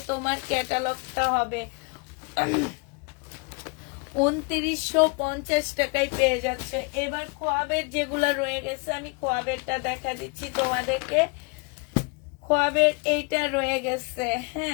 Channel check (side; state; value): right; quieter; 32.4 dB